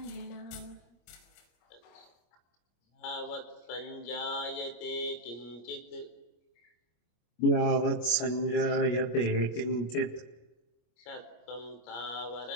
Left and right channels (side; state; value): right; late; 25 ms